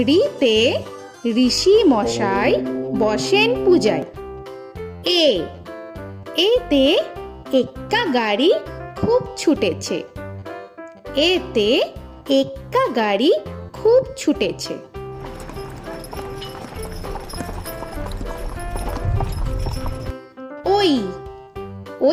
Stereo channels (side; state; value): both; identical; correlation 1.00